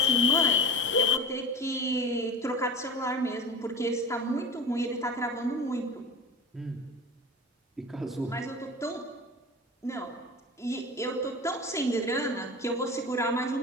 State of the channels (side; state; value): both; normal; correlation 0.32